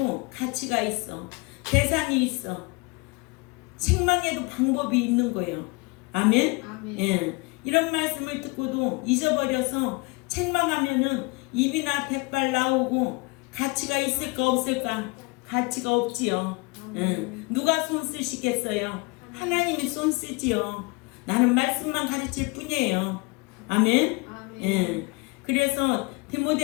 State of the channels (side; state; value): right; quieter; 27.7 dB